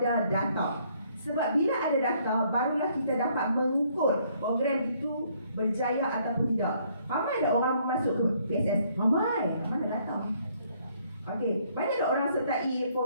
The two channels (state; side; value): inverted; both; correlation -0.66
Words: data. Sebab bila ada data, barulah kita dapat mengukur program itu berjaya ataupun tidak. Ramai ada orang masuk ke PSS? Ramai ada data. Okey, banyak tak orang sertai